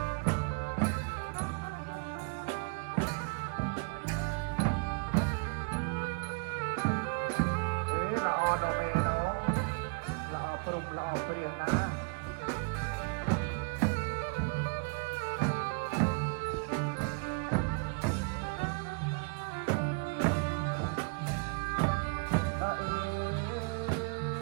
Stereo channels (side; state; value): left; quieter; 34.7 dB